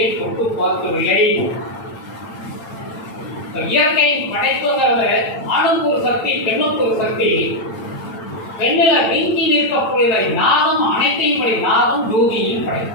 தொட்டு பார்க்கவில்லை. இயற்கையின் படைப்புங்கிறது ஆணுக்கு ஒரு சக்தி, பெண்ணுக்கு ஒரு சக்தி. பெண்ணில நீங்கி நிற்கக்கூடியதை நாதம் அனைத்தையும் படை. நாதம் ஜோதியையும்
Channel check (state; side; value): late; right; 8.9 ms